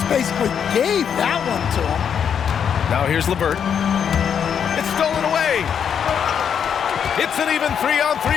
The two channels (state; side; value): quieter; right; 7.8 dB